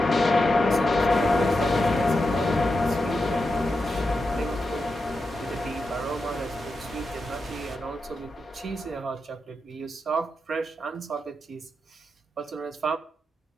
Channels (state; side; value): normal; both; correlation 0.88